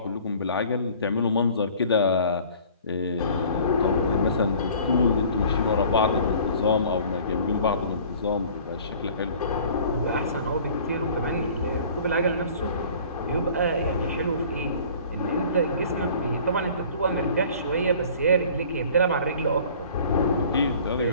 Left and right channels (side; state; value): both; inverted; correlation -0.49